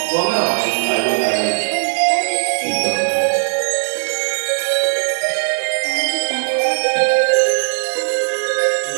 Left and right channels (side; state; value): left; silent; digital silence